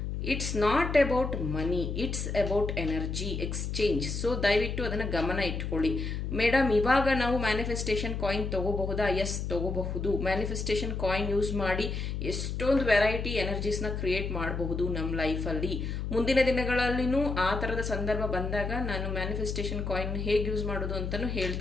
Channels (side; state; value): left; noise; hum, 3 dB below the sound